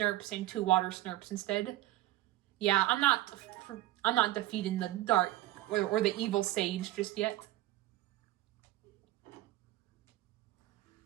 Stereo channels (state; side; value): quieter; left; 15.7 dB